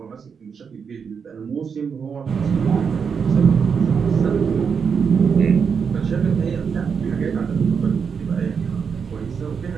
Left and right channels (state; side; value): quieter; left; 6.3 dB